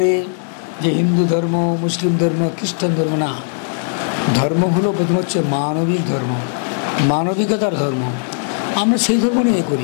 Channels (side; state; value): right; silent; digital silence